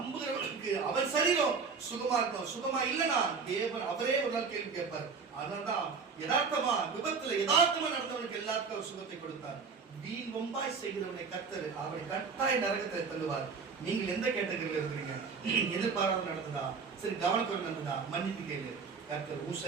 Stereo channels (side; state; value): left; quieter; 5.2 dB